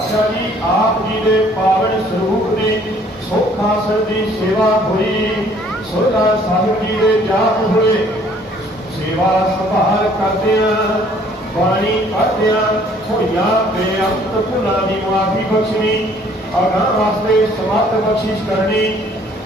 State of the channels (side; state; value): both; normal; correlation 0.59